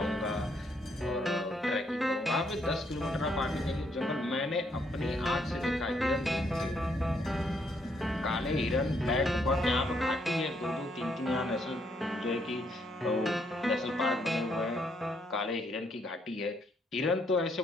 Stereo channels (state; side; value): normal; both; correlation 0.73